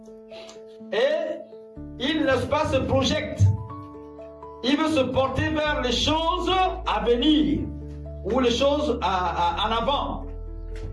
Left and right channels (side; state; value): both; identical; correlation 1.00